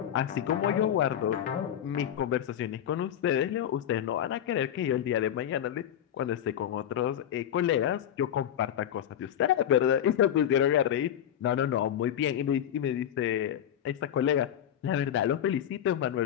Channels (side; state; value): right; quieter; 10.1 dB